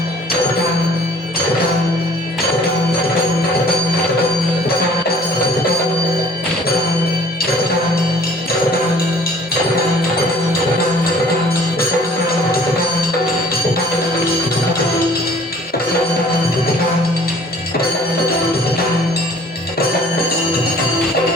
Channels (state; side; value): normal; both; correlation 0.53